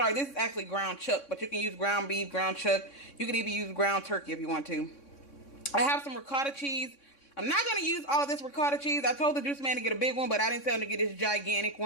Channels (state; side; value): late; right; 3.6 ms